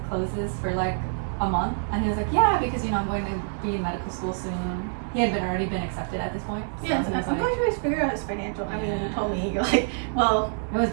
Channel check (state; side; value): silent; left; digital silence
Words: closes for like a month? And he was like, yeah, because I'm going to be in medical school soon. He had already been accepted at this point. So Yeah, he was I'm like, glad you guys figured out his financial. I mean, you Yeah. told me, you're like, well, it was